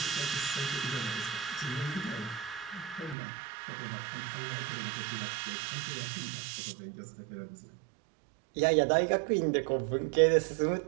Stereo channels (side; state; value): left; drops out; at 3.2 s